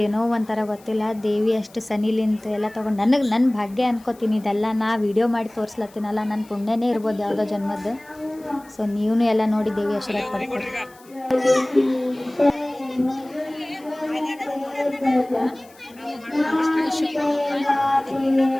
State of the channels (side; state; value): left; noise; hiss, 26 dB below the sound